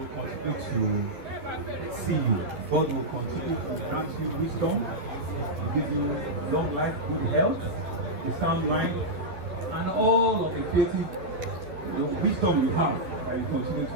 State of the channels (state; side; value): late; left; 12 ms